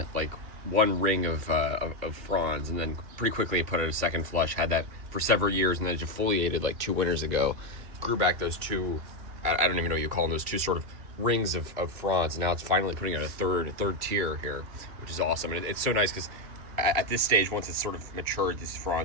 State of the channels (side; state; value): left; late; 2.8 ms